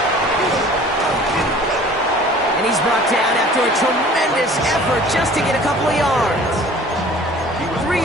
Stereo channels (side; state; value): both; normal; correlation 0.48